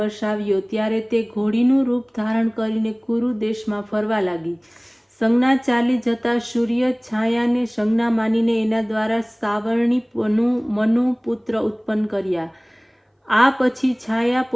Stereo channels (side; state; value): both; identical; correlation 1.00